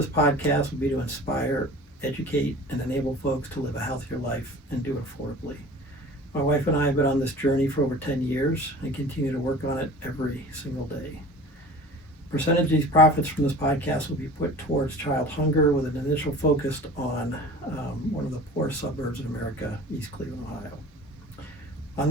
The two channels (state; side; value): normal; both; correlation 0.41